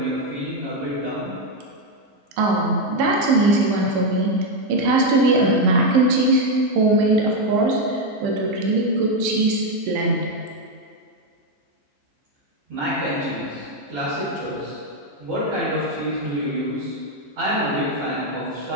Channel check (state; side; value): late; left; 15 ms